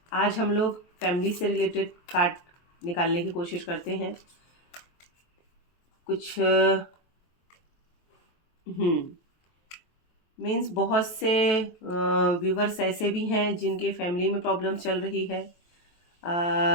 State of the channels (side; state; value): right; late; 23 ms